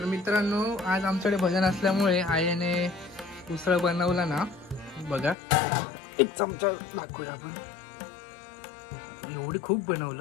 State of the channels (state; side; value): drops out; right; at 5.4 s